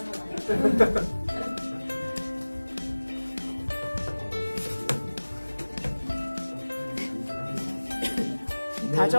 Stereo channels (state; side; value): inverted; both; correlation -1.00